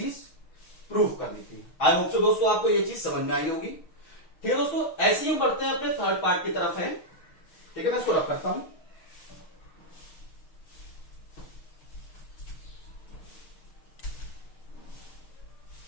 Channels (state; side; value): late; right; 6.4 ms